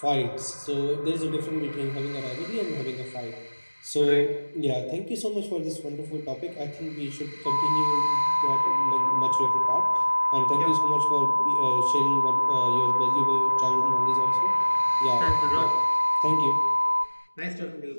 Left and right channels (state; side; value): inverted; both; correlation -1.00